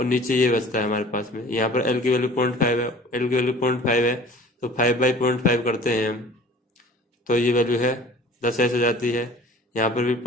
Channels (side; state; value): both; normal; correlation 0.46